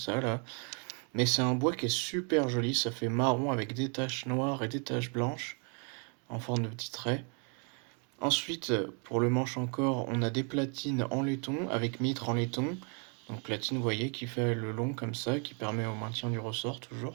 là. Mais c'est un bois qui est super joli. Ça fait marron avec des taches noires et des taches blanches en forme de petits traits. Ensuite, pour le manche encore, on a des platines en laiton avec mitre en laiton. Donc platine, vous voyez, qui fait le long comme ça, qui permet au maintien du ressort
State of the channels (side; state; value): left; quieter; 38.3 dB